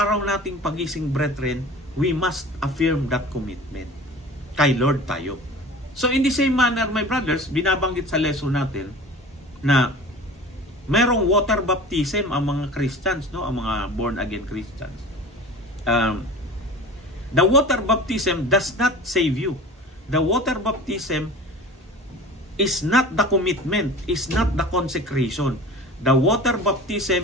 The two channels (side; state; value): both; normal; correlation 0.39